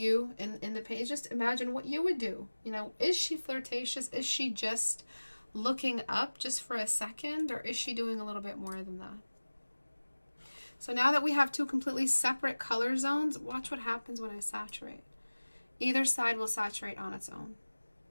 in the page, just imagine what you would do. You know, is she flirtatious? Is she just looking up just for a second, or is she doing a little bit more than that? So now that we have two completely separate color zones, watch what happens when I saturate. Either side will saturate on its own.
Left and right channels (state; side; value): inverted; both; correlation -1.00